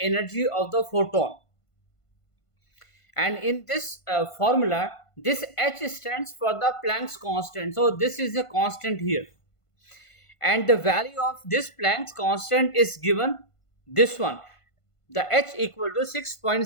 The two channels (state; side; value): late; right; 1.5 ms